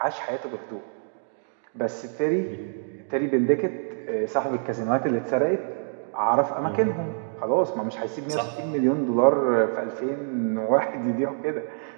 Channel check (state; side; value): silent; left; digital silence